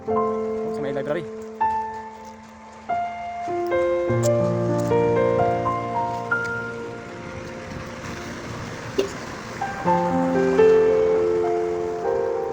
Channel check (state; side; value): identical; both; correlation 1.00